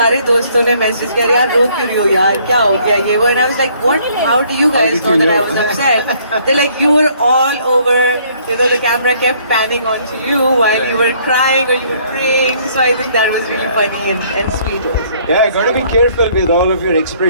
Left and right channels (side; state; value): both; inverted; correlation -0.62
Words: दोस्तों ने मैसेज किया यार रो क्यों रही हो यार क्या हो गया ये वो. And I was like what how do you guys know that I was upset. They like you were all over the camera kept panning onto you while you were crying or you were praying. So I think that was really funny and sweet also. Yeah, got to be careful with all of your